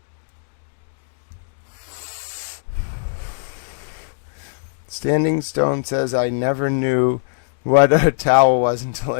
Standing Stone says, I never knew what a towel was until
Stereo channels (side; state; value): right; silent; digital silence